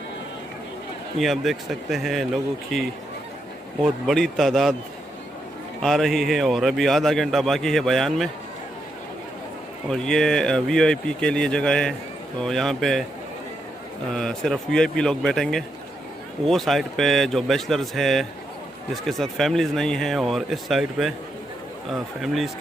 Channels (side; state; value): both; normal; correlation 0.82